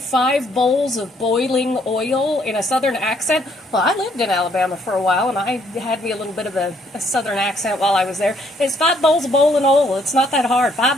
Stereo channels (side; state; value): both; normal; correlation 0.68